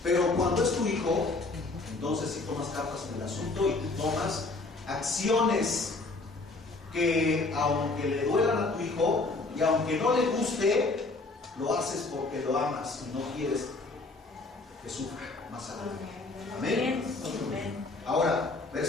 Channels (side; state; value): right; quieter; 3.4 dB